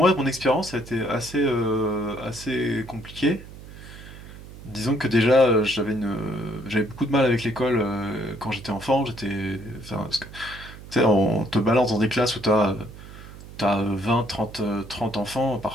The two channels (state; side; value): noise; right; hum, 16 dB below the sound